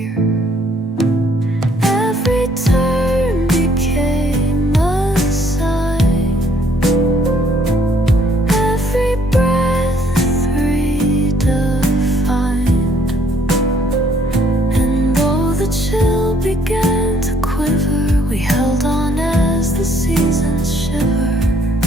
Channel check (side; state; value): both; normal; correlation 0.65